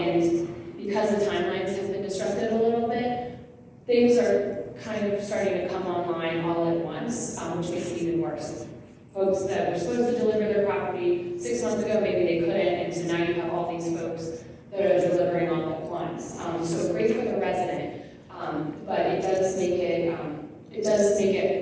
because the timelines have been disrupted a little bit, things are kind of starting to come online all at once, which makes it even worse. Folks that were supposed to deliver their property 6 months ago, maybe they couldn't, and so now you have all these folks that are delivering all at once. So great for the resident, but it does make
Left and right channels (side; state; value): both; identical; correlation 1.00